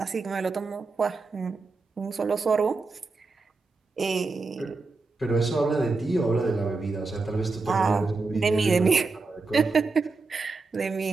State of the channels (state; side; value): quieter; left; 3.9 dB